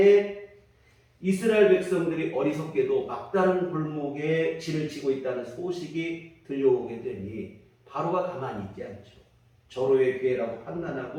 이스라엘 백성들이 어리석게도 막다른 골목에 진을 치고 있다는 소식이 들려오게 되니 바로가 가만히 있지 않죠. 절호의 기회라고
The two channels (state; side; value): identical; both; correlation 1.00